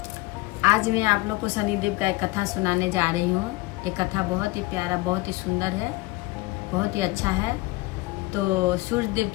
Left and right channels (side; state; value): right; quieter; 21.6 dB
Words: आज मैं आप लोग को शनिदेव का एक कथा सुनाने जा रही हूँ। ये कथा बहुत ही प्यारा, बहुत ही सुंदर है, बहुत ही अच्छा है। तो सूर्य देव